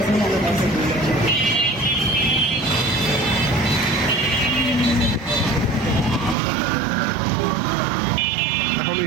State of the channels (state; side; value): drops out; left; at 6.4 s